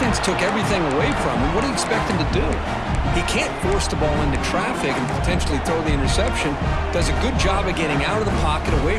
took everything away from him. What do you expect him to do? He can't force the ball into traffic and potentially throw the interception. Does a good job of getting out of the pocket,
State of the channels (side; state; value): both; identical; correlation 1.00